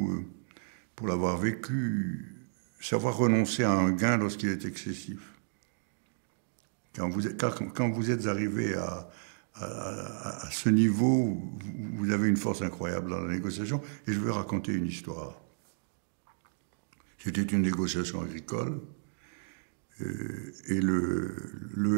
pour l'avoir vécu, savoir renoncer à un gain lorsqu'il est excessif. Quand vous êtes arrivé à ce niveau, vous avez une force incroyable dans la négociation. Et je vais raconter une histoire. C'était une négociation agricole. Et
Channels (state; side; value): silent; left; digital silence